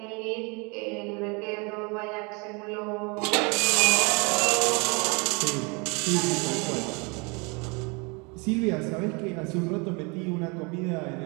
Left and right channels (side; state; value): left; quieter; 30.4 dB